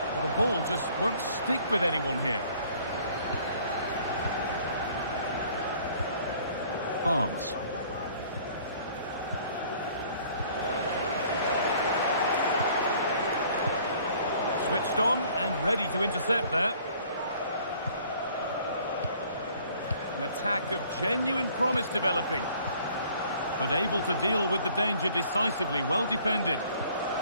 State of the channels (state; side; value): inverted; both; correlation -0.56